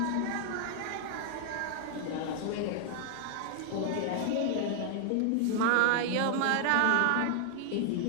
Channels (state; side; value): different; both; correlation 0.00